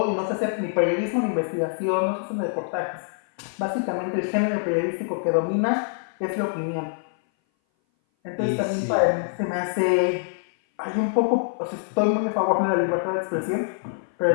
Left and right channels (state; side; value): silent; right; 58 dB below the other